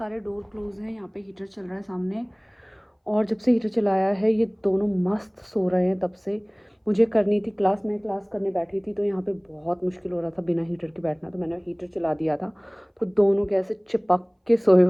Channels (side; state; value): both; identical; correlation 1.00